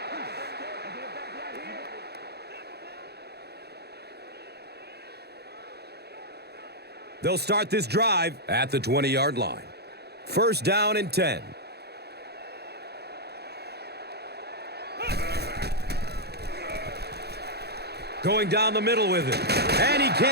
They'll start this drive at the 20-yard line. First down and 10. Going down the middle with it. And he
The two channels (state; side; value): late; left; 0.48 ms